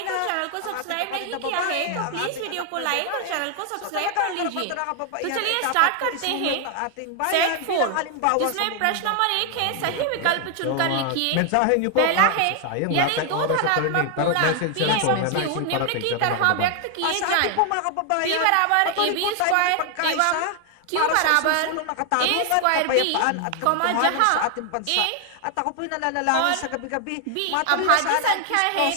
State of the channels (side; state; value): both; different; correlation 0.00